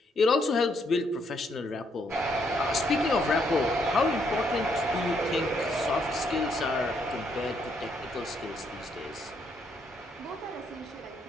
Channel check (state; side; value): normal; both; correlation 0.73